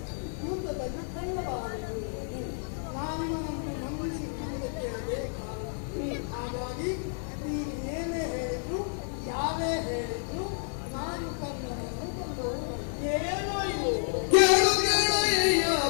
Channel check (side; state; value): right; silent; 58 dB below the other